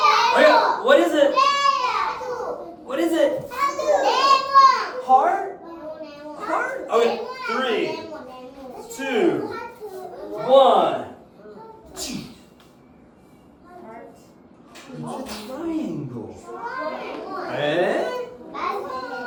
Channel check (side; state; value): both; identical; correlation 1.00